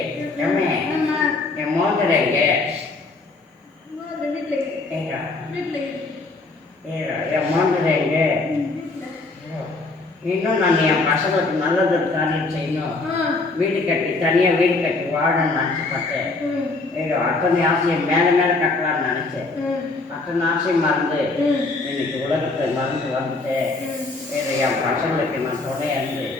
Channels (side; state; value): right; quieter; 3.5 dB